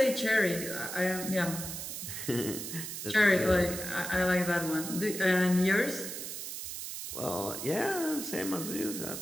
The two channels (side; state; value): right; noise; hiss, 7 dB below the sound